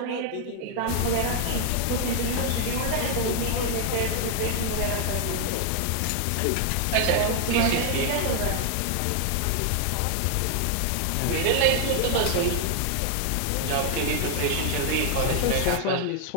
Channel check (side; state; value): both; different; correlation 0.00